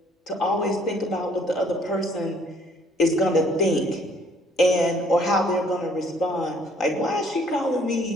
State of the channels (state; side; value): normal; both; correlation 0.61